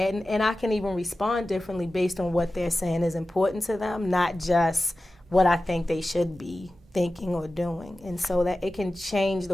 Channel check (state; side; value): normal; both; correlation 0.95